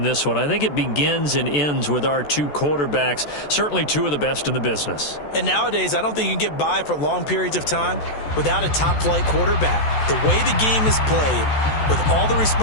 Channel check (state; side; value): late; right; 14 ms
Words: this one. I think it begins and ends with our two quarterbacks, certainly two of the best in the business. And nowadays, I don't think you can get by for long periods of time without a top-flight quarterback. The way the game is played, with all the